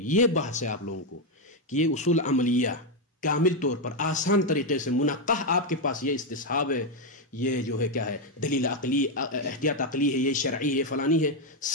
بحث ہے آپ لوگوں کو کہ یہ اصول عملیہ کامل طور پر آسان طریقے سے منقح آپ کے پاس یہ استصحاب ہے، یہ جو ہے کیا ہے دلیل عقلی، احتیاط عقلی ہے، یہ شرعی ہے، فلانی ہے.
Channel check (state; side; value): normal; both; correlation 0.04